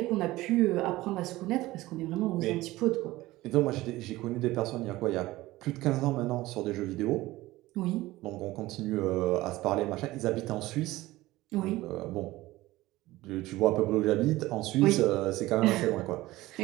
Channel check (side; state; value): left; quieter; 18.0 dB